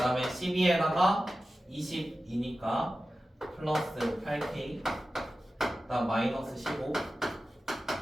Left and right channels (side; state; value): both; normal; correlation 0.94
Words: 12에다가 22니까 플러스 8k 그 다음 마이너스 15